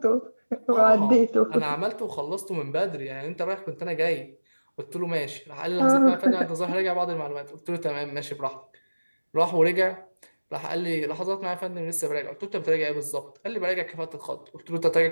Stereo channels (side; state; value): both; inverted; correlation -1.00